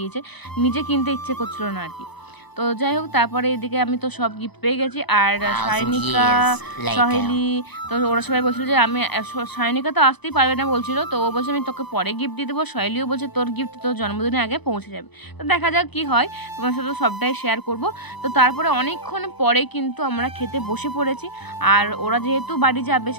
নিজে কিনতে ইচ্ছে করছিল না আর কি। তো যাই হোক, তারপরে এদিকে আমি তো সব গিফট পেয়ে গেছি। আর সায়নিকা, সহেলি, তো ওরা সবাই বলছিল যে আমি, সায়নিকা তো আসতেই পারবে না বলছিল, তো ও বলছে আমি তোকে পরে গিফট দিয়ে দেবো। সহেলিও বলছে তোর গিফট তোর জন্মদিনের আগে পৌঁছে যাবে। তো দেখা যাক কি হয়, তোমার সাথে সবটাই শেয়ার করব। তো তারপরে অনেকক্ষণ পরে কিন্তু আমরা খেতে বসে পড়েছি। আর ওরা যেহেতু বাড়ি যাবে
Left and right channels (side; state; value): right; late; 0.99 ms